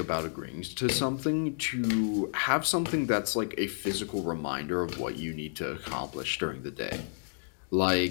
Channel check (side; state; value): right; silent; digital silence